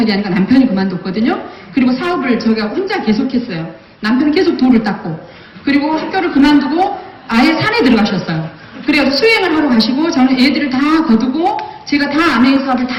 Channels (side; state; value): both; identical; correlation 1.00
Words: 하니까 남편이 그만뒀거든요. 그리고 사업을 제가 혼자 계속했어요. 남편은 계속 돌을 닦고, 그리고 학교를 그만두고 아예 산에 들어가셨어요. 그래서 수행을 하러 가시고 저는 애들을 다 거두고 제가 다 아메이 사업을 다